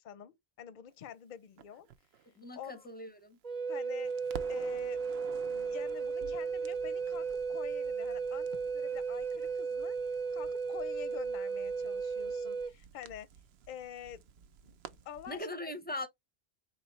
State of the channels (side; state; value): left; quieter; 3.7 dB